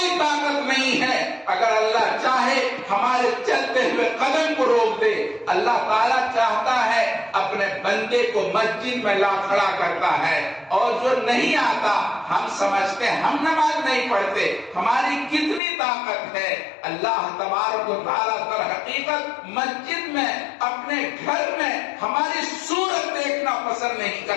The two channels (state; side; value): drops out; right; at 15.6 s